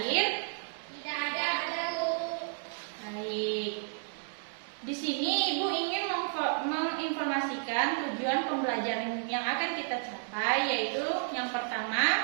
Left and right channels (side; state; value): left; silent; 56 dB below the other